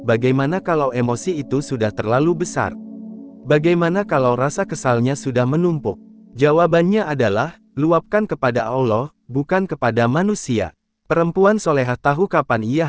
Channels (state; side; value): identical; both; correlation 1.00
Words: bagaimana kalau emosi itu sudah terlalu besar? Bagaimana kalau rasa kesalnya sudah menumpuk? Jawabannya adalah, luapkan kepada Allah, bukan kepada manusia. Perempuan solehah tahu kapan ia